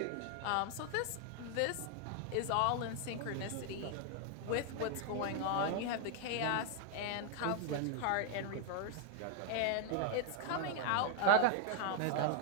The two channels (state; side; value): different; both; correlation 0.00